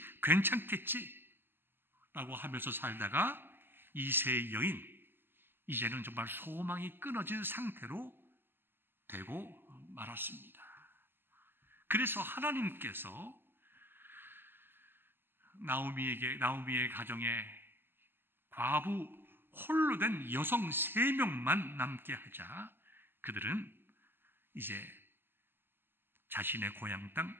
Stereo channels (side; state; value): left; late; 0.10 ms